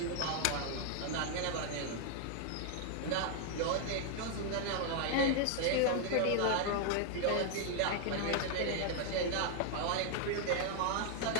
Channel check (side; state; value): both; different; correlation 0.00